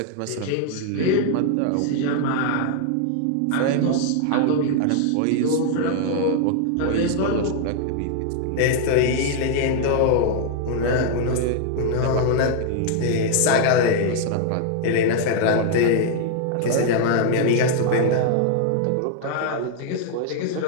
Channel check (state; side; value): different; both; correlation 0.00